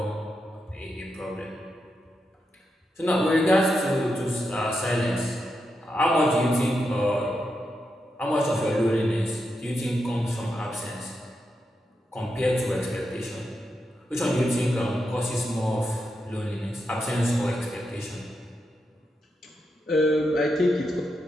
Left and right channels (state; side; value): normal; both; correlation 0.86